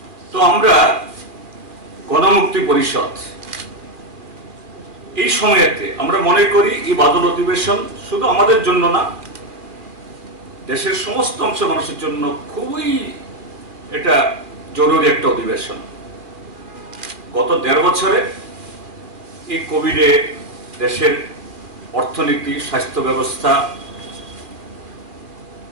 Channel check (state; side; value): late; left; 2.4 ms